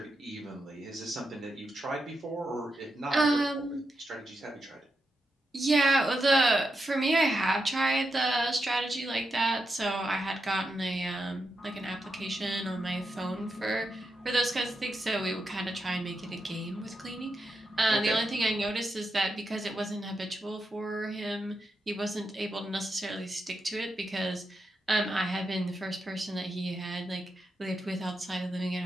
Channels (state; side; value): normal; both; correlation 0.86